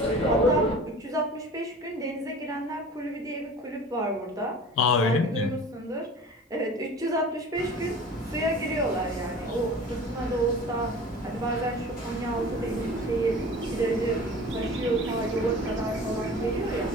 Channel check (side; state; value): both; normal; correlation 0.40